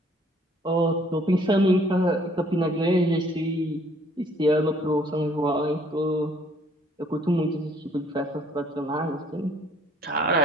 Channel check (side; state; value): both; normal; correlation 0.61